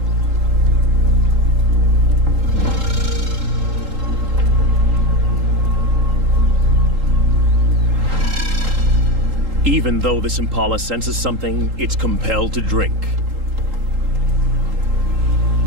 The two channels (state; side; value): late; left; 3.8 ms